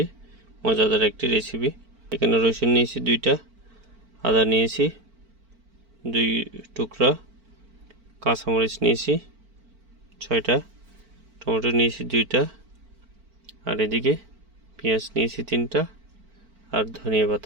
মজাদার একটি রেসিপি। এখানে রসুন নিয়েছি 2টা, আদা নিয়েছি 2 টুকরা, কাঁচামরিচ নিয়েছি 6টা, টমেটো নিয়েছি 2টা, আর এদিকে পেঁয়াজ নিয়েছি 3টা, আর ধনিয়া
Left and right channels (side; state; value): left; late; 4.5 ms